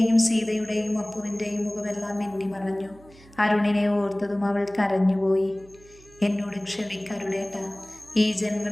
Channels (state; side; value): noise; right; hum, 24 dB below the sound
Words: സീതയുടെയും അപ്പുവിൻ്റെയും മുഖമെല്ലാം മിന്നിമറഞ്ഞു. അരുണിനെ ഓർത്തതും അവൾ കരഞ്ഞുപോയി. എന്നോട് ക്ഷമിക്കരുടേട്ട, ഈ ജന്മം